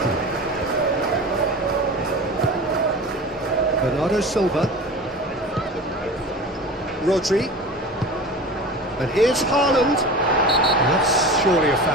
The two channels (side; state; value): both; normal; correlation 0.33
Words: Bernardo Silva. Rodri. And here's Haaland. And that's surely a